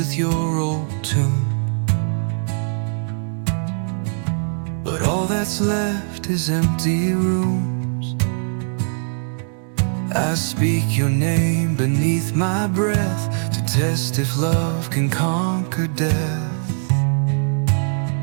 your old tune, but all that's left is empty rooms. I speak your name beneath my breath to test if love can conquer death.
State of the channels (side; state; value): left; silent; 65 dB below the other